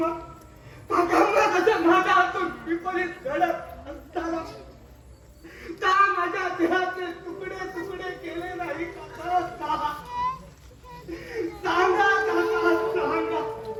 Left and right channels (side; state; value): both; identical; correlation 1.00